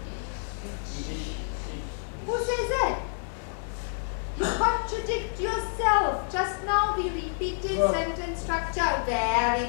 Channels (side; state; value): right; silent; digital silence